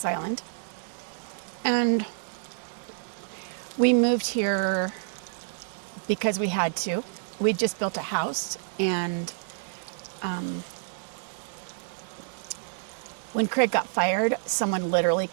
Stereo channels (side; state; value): left; silent; 59 dB below the other